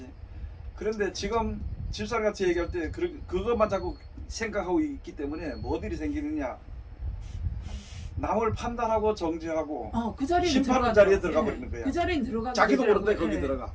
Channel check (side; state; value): both; identical; correlation 1.00